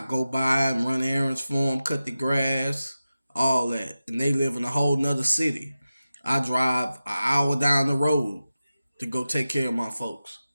go by and run errands for them, cut the grass, all that. And they live in a whole nother city. I drive an hour down the road to go take care of my folks.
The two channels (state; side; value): inverted; both; correlation -0.94